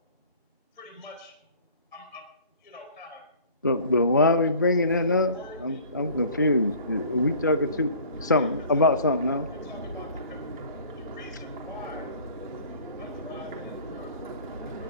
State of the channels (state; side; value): inverted; both; correlation -0.48